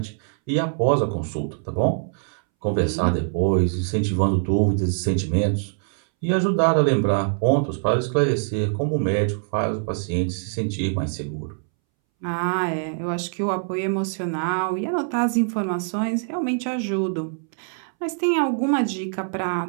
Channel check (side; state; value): left; silent; 63 dB below the other